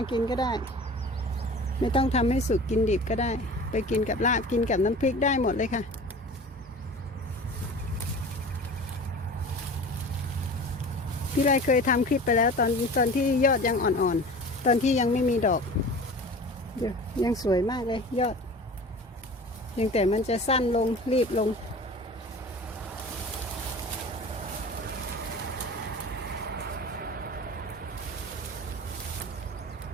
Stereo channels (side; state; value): both; normal; correlation 0.38